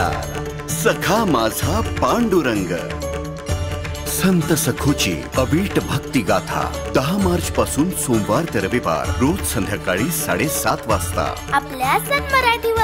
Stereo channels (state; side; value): identical; both; correlation 1.00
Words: सखा माझा पांडुरंग. संत सखूची अवीट भक्ती गाथा 10 मार्च पासून सोमवार ते रविवार रोज संध्याकाळी 7:30 वाजता आपल्या सन